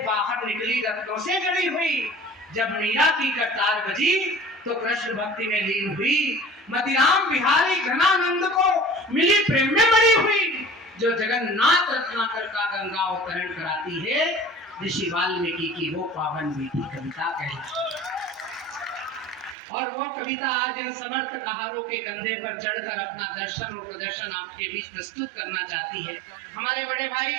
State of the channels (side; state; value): left; drops out; at 19.6 s